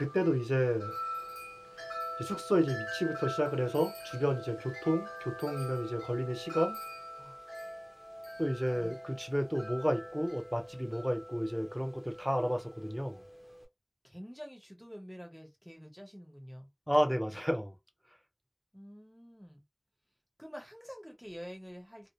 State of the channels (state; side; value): identical; both; correlation 1.00